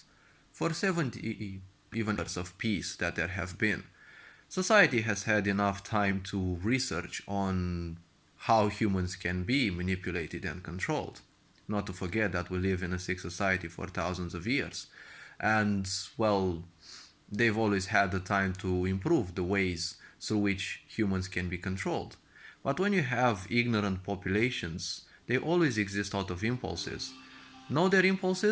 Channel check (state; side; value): identical; both; correlation 1.00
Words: for 70 even years of peace that there have been, society has had enough time to research on how humans can be manipulated and controlled. Not to forget that we live in a sick society for thousands of years. And, well, they've always had the time to improve the ways through which humans can be controlled. But when you have ignorant populations, they always exist out of impulses. Know their